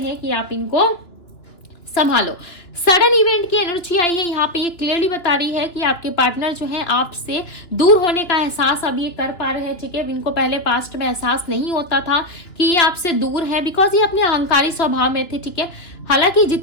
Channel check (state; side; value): late; right; 2.9 ms